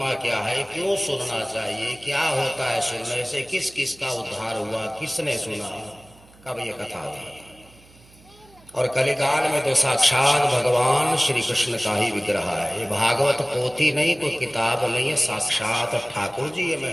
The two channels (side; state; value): right; noise; hum, 26 dB below the sound